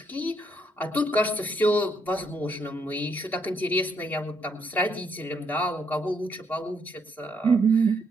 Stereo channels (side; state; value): both; normal; correlation 0.73